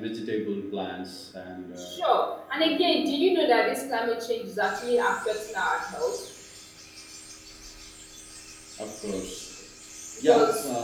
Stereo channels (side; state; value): both; identical; correlation 1.00